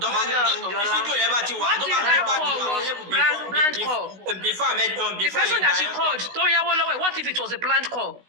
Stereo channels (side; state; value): left; late; 16 ms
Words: yẹn bá ti wà tó bá ti wà before the person that she called tó yáwó lọ́wọ́ ẹ̀ what if it was a planned call?